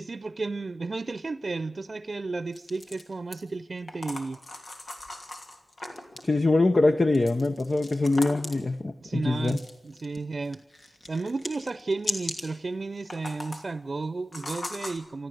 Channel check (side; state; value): both; normal; correlation 0.94